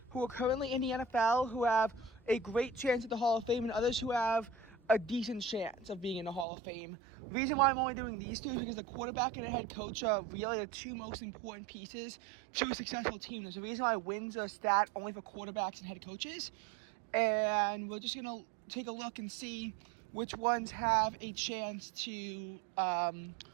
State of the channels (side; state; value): left; drops out; at 6.5 s